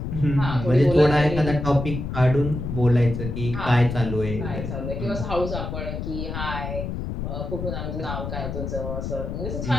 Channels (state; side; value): noise; left; rumble, 5 dB below the sound